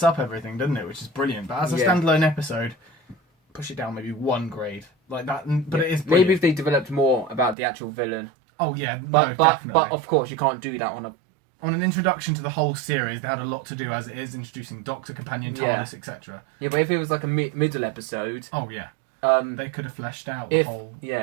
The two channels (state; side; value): drops out; left; at 7.6 s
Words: up everything, doesn't it? Which is brilliant. But as a standalone episode, push it down maybe 1 grade. Like that. But it is brilliant. Maybe if they developed more about the actual villain. Oh, yeah. But of course, you can't do that on an introduction to the whole series. They had a lot to do as it is, introducing Doctor, Companion, TARDIS, etc. Yeah, but if it was like a middle episode... Oh, yeah. They could have fleshed out the whole,